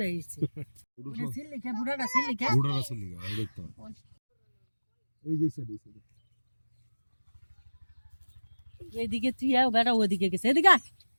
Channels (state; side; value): inverted; both; correlation -1.00